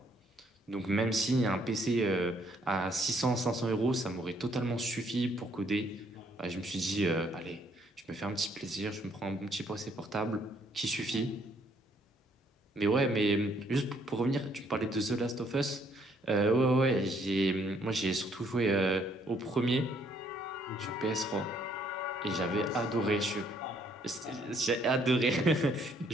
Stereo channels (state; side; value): normal; both; correlation 0.67